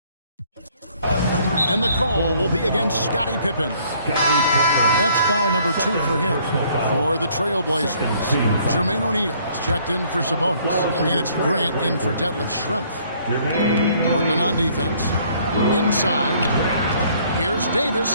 And the call will be against Scottie Pippen. That's foul number 2 for him. For the Trailblazers, Jermaine O'Neal is checked in for Sabonis. And it's Grant in for Detlef Schrempf. Portland on defense. Inside. Here's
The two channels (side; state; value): both; inverted; correlation -0.62